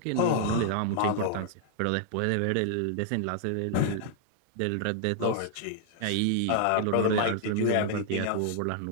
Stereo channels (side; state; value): both; different; correlation -0.01